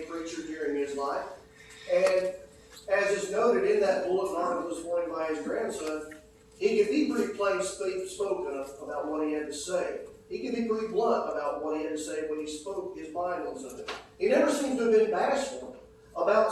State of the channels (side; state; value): both; identical; correlation 1.00